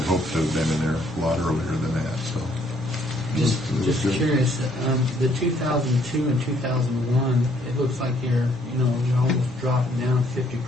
hoped to have been in there a lot earlier than that, so. Just It was good. curious, the 2002 and 2001, it looks like you're almost dropping down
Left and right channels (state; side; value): normal; both; correlation 0.66